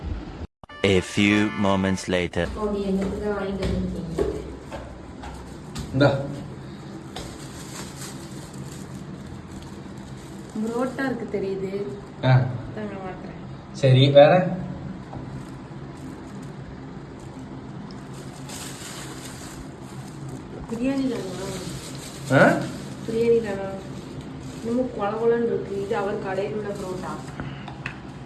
A few moments later. ஓடி என்னது வாங்கிட்டு வந்தீங்க? இந்தா புரோட்டா இருக்கு தெரியுது. தாங்க வாங்குறேன். சரி வேற? பிரியாணி தானா? பிரியாணி தானா? இன்னமும் குழகுலன்னு இருக்கு. இது அவர் கடையில் உள்ள புரோட்டா.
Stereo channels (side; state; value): both; identical; correlation 1.00